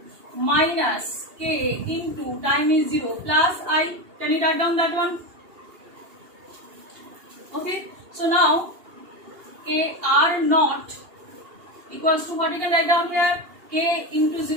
minus K into time is 0 plus I. Can you write down that one? Okay. So now K R naught equals to what you can write down here? K into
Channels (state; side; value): late; left; 2.8 ms